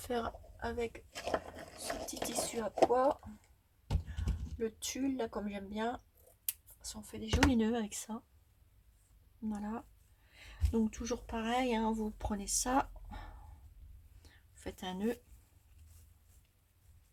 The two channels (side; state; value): both; identical; correlation 1.00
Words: avec ce petit tissu à pois. Le tulle, là, comme j'aime bien. On fait des jolis nœuds avec ça. Voilà. Donc, toujours pareil, hein, vous prenez ça. Vous faites un nœud.